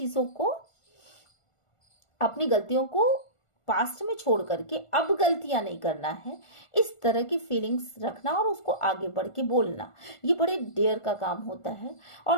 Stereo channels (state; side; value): late; right; 1.4 ms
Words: को, अपनी गलतियों को पास्ट में छोड़ करके अब गलतियां नहीं करना है, इस तरह की फीलिंग्स रखना और उसको आगे बढ़ के बोलना, ये बड़े डेयर का काम होता है।